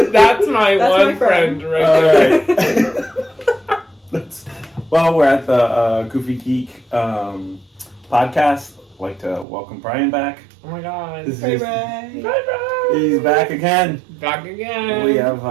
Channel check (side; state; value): left; drops out; at 9.5 s